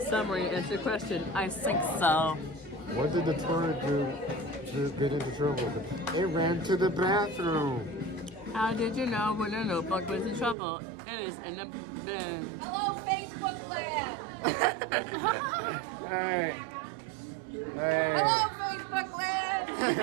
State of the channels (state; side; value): drops out; left; at 10.6 s